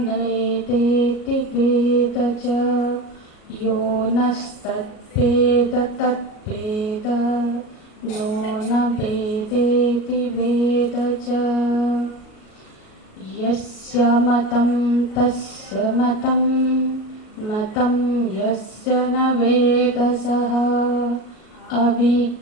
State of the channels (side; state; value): right; late; 38 ms